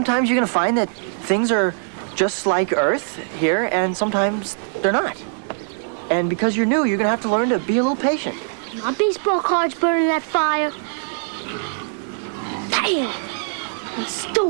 you're gonna find that things are just like Earth here, and sometimes they're not. And because you're new, you're gonna have to learn to be a little patient. My baseball card's burning that fire. Damn! I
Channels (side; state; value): left; silent; 65 dB below the other